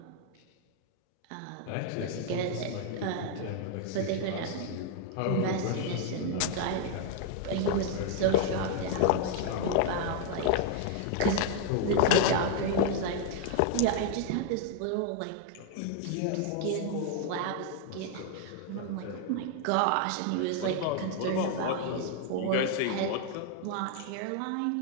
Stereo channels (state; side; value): different; both; correlation 0.00